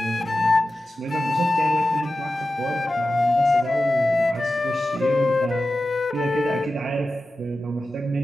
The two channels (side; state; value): both; normal; correlation 0.93